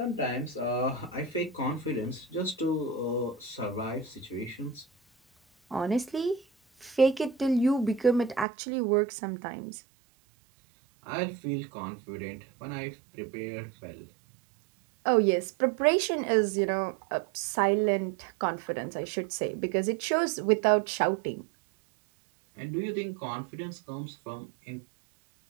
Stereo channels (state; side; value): drops out; left; at 8.5 s